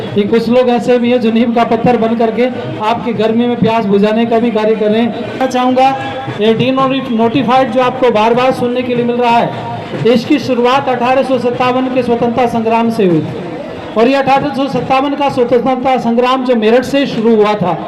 कि कुछ लोग ऐसे भी हैं जो नीम का पत्थर बन करके आपकी गर्मी में प्यास बुझाने का भी कार्य कर रहे हैं। मैं चाहूँगा ये डीनोटिफाइड जो आपको बार बार सुनने के लिए मिल रहा है, इसकी शुरुआत 1857 के स्वतंत्रता संग्राम से हुई और ये 1857 का स्वतंत्रता संग्राम जो मेरठ से शुरू हुआ था,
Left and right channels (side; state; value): both; identical; correlation 1.00